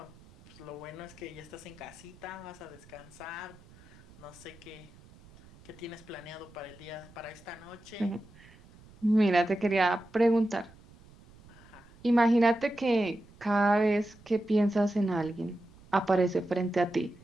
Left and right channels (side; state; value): right; noise; rumble, 24 dB below the sound